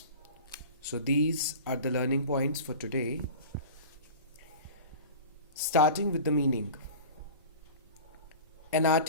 So these are the learning points for today. Starting with the meaning. An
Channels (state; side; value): inverted; both; correlation -0.37